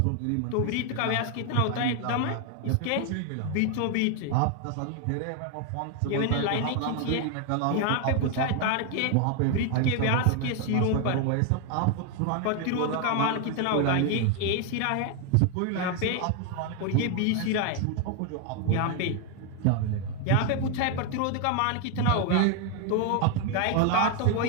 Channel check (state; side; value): different; both; correlation 0.01